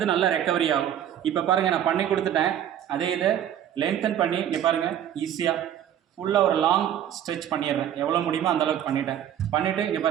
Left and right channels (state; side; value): quieter; left; 10.4 dB